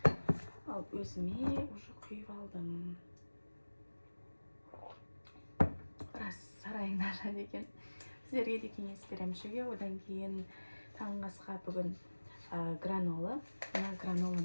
Ал өзіме уже құйып алдым. Рас сарайың нашар екен. Сіздерге де кеңес беремін ішуге. Одан кейін таңғы асқа бүгін гранола. Мына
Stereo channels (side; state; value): both; inverted; correlation -1.00